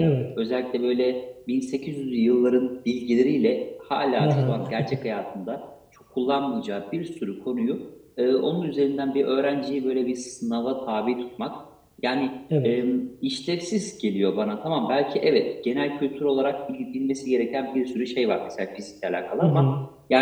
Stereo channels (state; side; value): identical; both; correlation 1.00